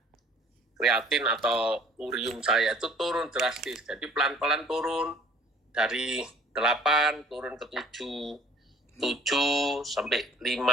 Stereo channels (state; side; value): normal; both; correlation 0.52